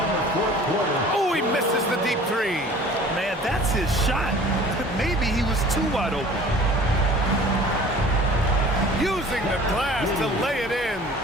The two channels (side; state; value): both; normal; correlation 0.46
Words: Oh, he misses the deep three. Man, that's his shot. Maybe he was too wide open. Using the glass to lay it in.